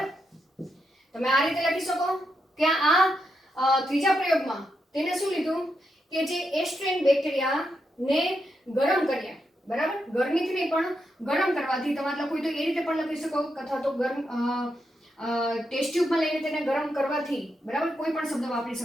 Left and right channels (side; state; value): both; normal; correlation 0.83